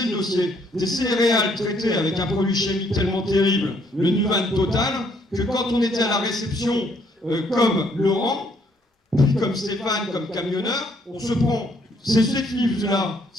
le dossier. Des céréales traitées avec un produit chimique tellement terrible, le Nuvan Total, que quand on était à la réception, comme Laurent, puis comme Stéphane, comme camionneur, on se prend ces effluves-là,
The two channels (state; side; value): normal; both; correlation 0.68